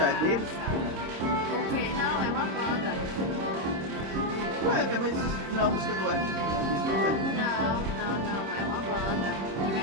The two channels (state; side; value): late; left; 26 ms